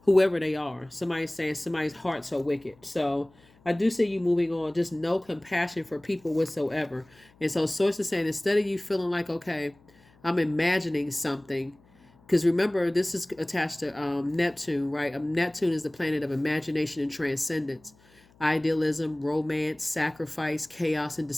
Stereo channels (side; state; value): left; noise; hum, 29 dB below the sound